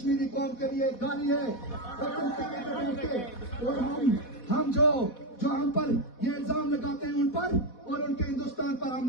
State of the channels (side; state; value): right; late; 4.1 ms